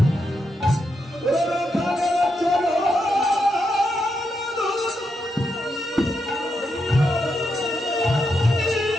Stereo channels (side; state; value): both; normal; correlation 0.83